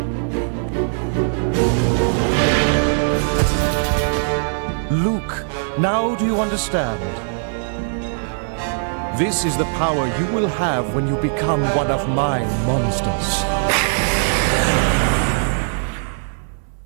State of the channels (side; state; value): left; silent; digital silence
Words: Luke, now do you understand? This is the power you will have when you become one of my monsters.